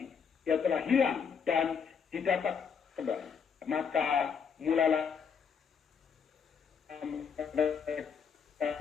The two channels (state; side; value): quieter; right; 6.5 dB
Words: Ia telah hilang dan didapat kembali. Maka mulailah